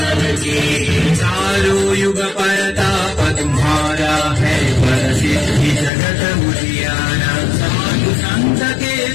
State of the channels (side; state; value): right; drops out; at 5.9 s